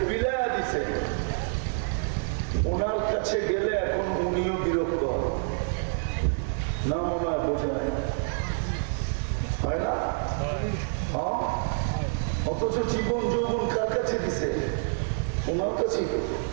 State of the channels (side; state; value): left; silent; 56 dB below the other